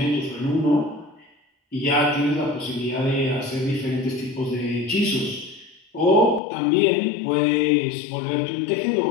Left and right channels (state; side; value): drops out; right; at 6.4 s